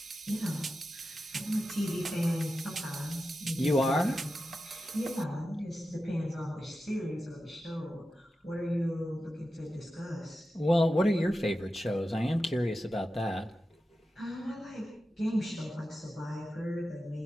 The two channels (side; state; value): both; normal; correlation 0.91